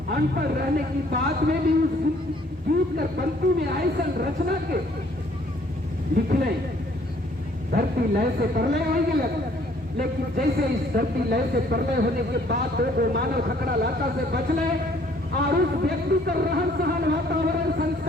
अनपढ़ रहने की बात में भी उस गीत कर पंक्ति में ऐसा रचना के लिखले। धरती लय से प्रलय हो गया, लेकिन जैसे इस धरती लय से प्रलय होने के बाद दो मानव खकड़ा लाता से बचले और उस व्यक्ति का रहन सहन वातावरण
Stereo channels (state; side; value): normal; both; correlation 0.61